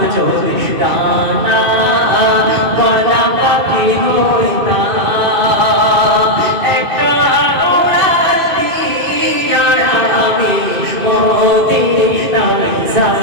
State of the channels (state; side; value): late; left; 2.6 ms